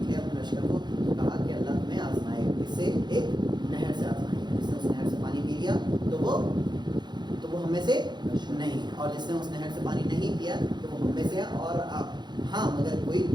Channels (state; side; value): late; left; 0.21 ms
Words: اپنے لشکر کو، تو کہا کہ اللہ تمہیں آزمائے، اس سے ایک نہر سے آزمائے گا. جس نے اس نہر سے پانی پی لیا تو وہ ہم میں سے نہیں ہے، اور جس نے اس نہر سے پانی نہیں پیا تو وہ ہم میں سے ہے، اور ہاں مگر کوئی